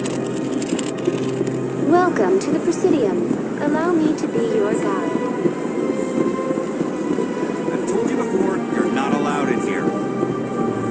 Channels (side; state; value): both; identical; correlation 1.00